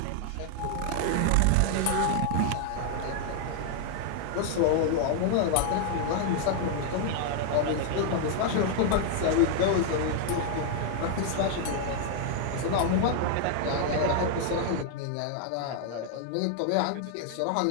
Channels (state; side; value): different; both; correlation 0.00